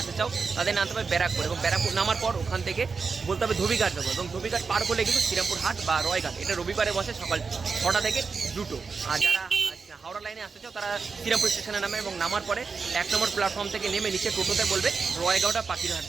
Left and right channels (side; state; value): left; quieter; 4.9 dB